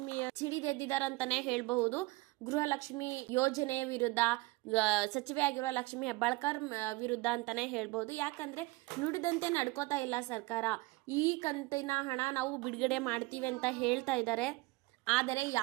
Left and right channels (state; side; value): quieter; left; 22.5 dB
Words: ಸಿಡಿದೆದ್ದಿದಾರಂತಾನೆ ಹೇಳಬಹುದು. ಗೃಹಲಕ್ಷ್ಮಿ ಯೋಜನೆಯ ವಿರುದ್ಧ ಸಚಿವೆಯಾಗಿರುವ ಲಕ್ಷ್ಮಿ ಹೆಬ್ಬಾಳ್ಕರ್ ವಿರುದ್ಧ ಅಂತಾನೆ ಹೇಳ್ಬಹುದು. ಯಾಕಂದ್ರೆ ನುಡಿದಂತೆ ನಡ್ಕೋತಾ ಇಲ್ಲ ಸರ್ಕಾರ. ಈ ಕಂತಿನ ಹಣ ನಾವು ಬಿಡುಗಡೆ ಮಾಡ್ತೀವಿ ಅಂತ ಹೇಳ್ತಾ ಇದ್ದಾರೆ, ಆದರೆ